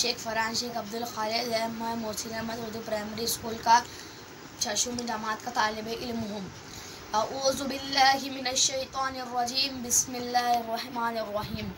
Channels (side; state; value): both; identical; correlation 1.00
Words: फरहान शेख अब्दुल खालिद है। मैं मोहसिन अहमद उर्दू प्राइमरी स्कूल का 6वीं जमात का तालिब इल्म हूँ। अऊज़ु बिल्लाहि मिनश शैतानिर रजीम, बिस्मिल्लाहिर रहमानिर रहीम।